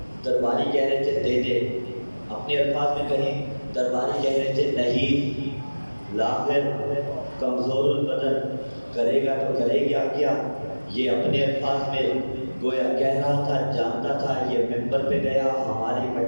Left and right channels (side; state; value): both; inverted; correlation -1.00